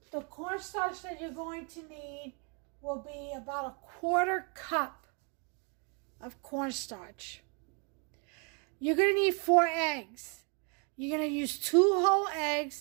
the cornstarch that you're going to need will be about 1/4 cup of cornstarch. You're going to need 4 eggs. You're going to use 2 whole eggs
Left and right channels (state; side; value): quieter; left; 36.7 dB